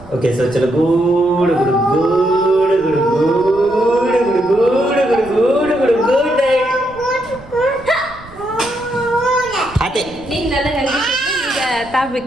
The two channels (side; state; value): right; noise; rumble, 20 dB below the sound